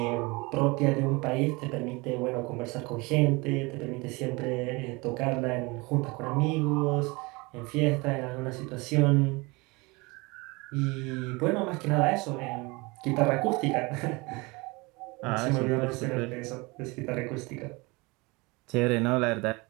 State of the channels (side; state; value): left; quieter; 25.5 dB